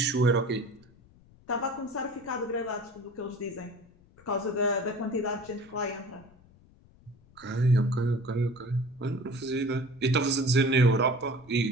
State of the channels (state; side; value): noise; left; rumble, 27 dB below the sound